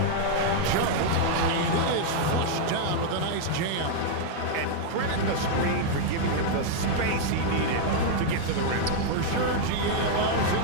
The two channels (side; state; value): both; different; correlation 0.00